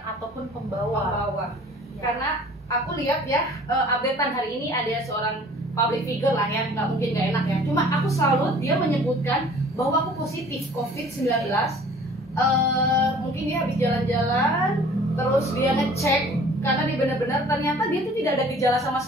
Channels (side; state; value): both; normal; correlation 0.50